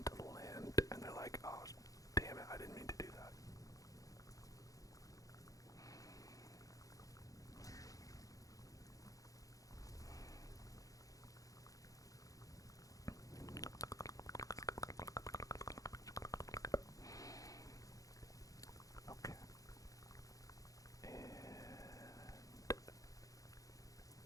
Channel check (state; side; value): late; right; 0.17 ms